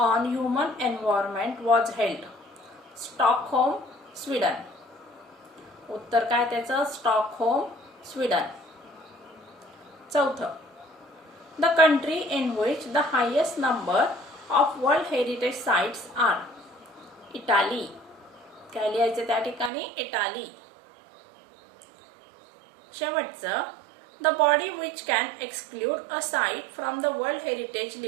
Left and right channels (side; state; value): left; drops out; at 19.7 s